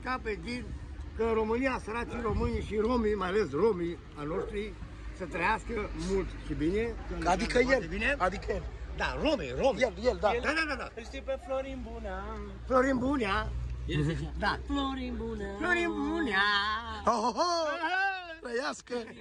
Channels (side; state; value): both; identical; correlation 1.00